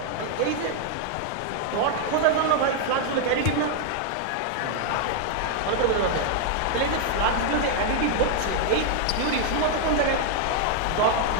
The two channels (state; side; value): different; both; correlation 0.00